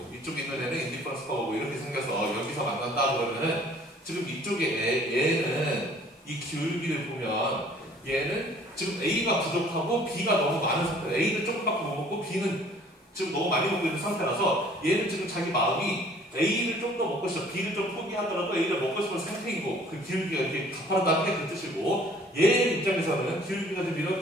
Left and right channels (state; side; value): normal; both; correlation 0.54